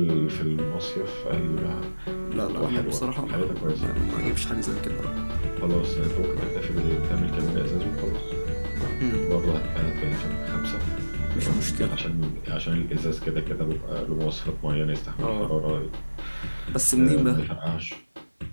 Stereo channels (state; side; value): inverted; both; correlation -1.00